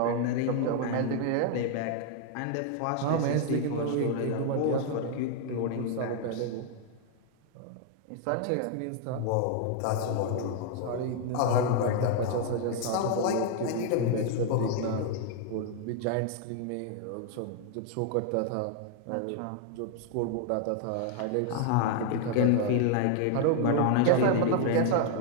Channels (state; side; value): different; both; correlation 0.00